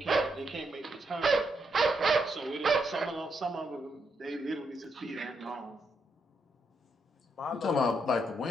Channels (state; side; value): normal; both; correlation 0.80